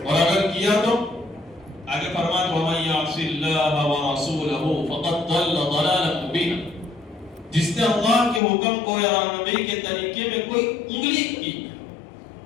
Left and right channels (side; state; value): right; drops out; at 8.4 s